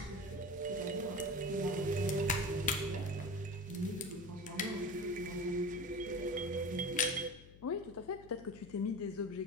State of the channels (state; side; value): noise; left; hum, 19 dB below the sound